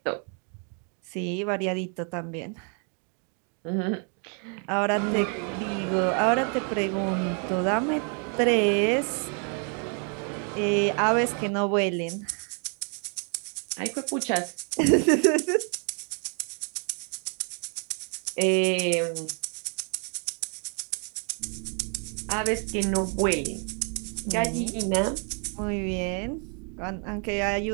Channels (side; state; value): left; quieter; 39.8 dB